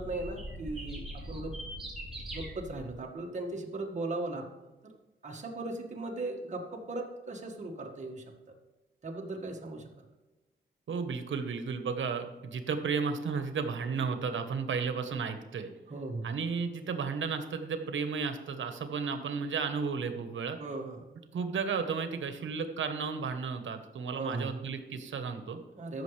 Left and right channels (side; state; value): left; quieter; 4.3 dB